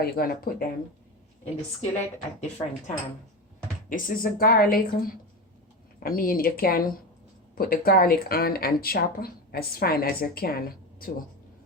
you're going to put them in the skillet at different time. This is a garlic. I mean, you can put the garlic on and chop as fine as you can too.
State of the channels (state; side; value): normal; both; correlation 0.22